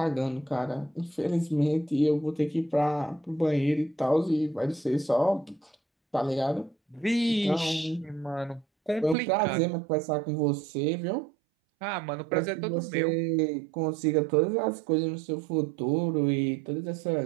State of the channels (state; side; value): drops out; left; at 9.2 s